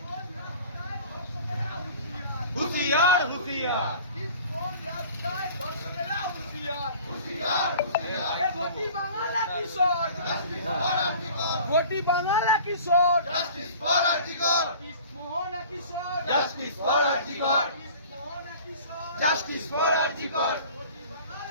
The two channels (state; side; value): inverted; both; correlation -0.45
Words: হুঁশিয়ার, হুঁশিয়ার। ঘটি বাংলা কিশোর, ঘটি বাংলা কিশোর, Mohan Kishore, justice for RG Kar, justice for RG Kar,